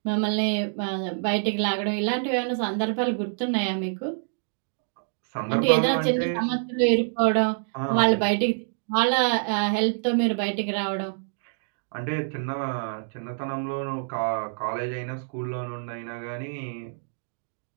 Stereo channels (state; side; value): silent; left; digital silence